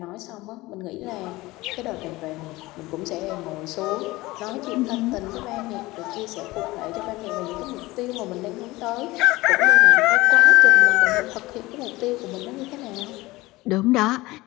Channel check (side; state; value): right; quieter; 19.9 dB